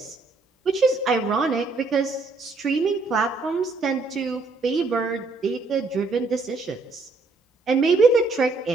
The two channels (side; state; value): left; quieter; 3.7 dB